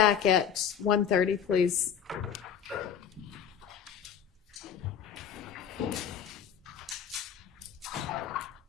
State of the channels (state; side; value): quieter; right; 8.2 dB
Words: at 1:30, please.